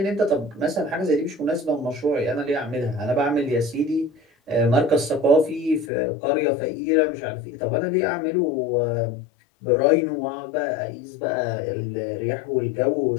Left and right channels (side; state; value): right; drops out; at 5.9 s